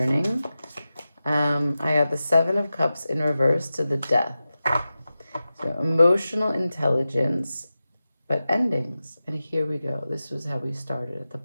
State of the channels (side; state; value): both; inverted; correlation -0.94